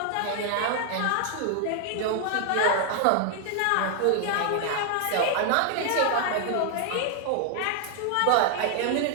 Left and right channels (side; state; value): both; different; correlation 0.00